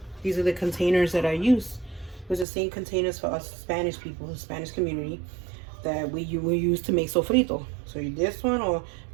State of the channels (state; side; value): drops out; left; at 2.5 s